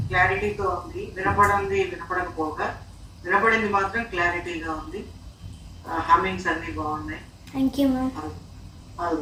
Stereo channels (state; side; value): identical; both; correlation 1.00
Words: క్లారిటీతో ఉంది, వినపడకపోగా వినపడింది మాత్రం క్లారిటీగా ఉంది. హమ్మింగ్స్ అన్ని బాగున్నాయి. Thank you ma'am. All